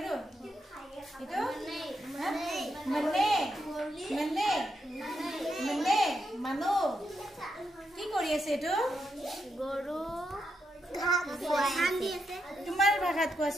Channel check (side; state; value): both; normal; correlation 0.82